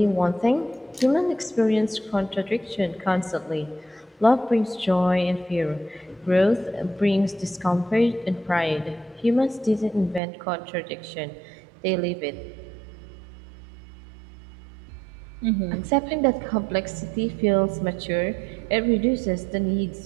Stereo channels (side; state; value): left; drops out; at 10.2 s